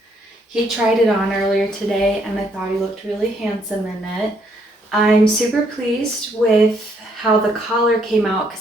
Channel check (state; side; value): normal; both; correlation 0.70